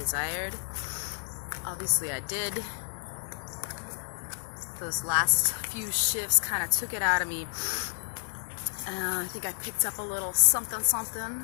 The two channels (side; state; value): right; silent; digital silence